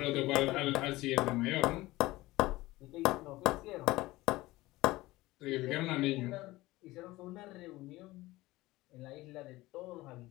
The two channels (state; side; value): quieter; right; 18.9 dB